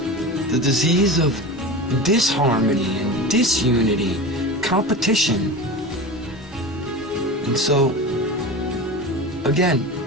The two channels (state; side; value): normal; both; correlation 0.29